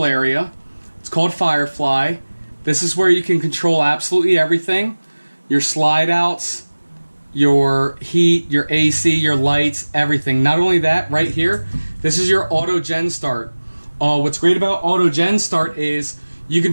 area. It's called Firefly. This is where you can control absolutely everything. Your slide outs, your heat, your AC, your lights, everything. Not only that, right here, this is your auto gen start. What's great about auto gen start is you can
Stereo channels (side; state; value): both; inverted; correlation -1.00